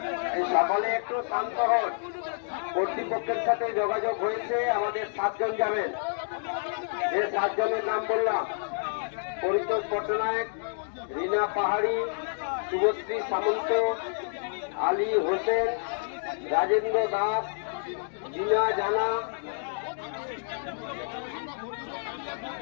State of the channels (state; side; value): silent; right; digital silence